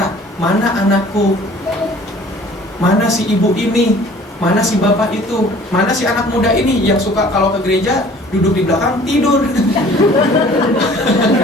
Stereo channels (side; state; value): both; normal; correlation 0.50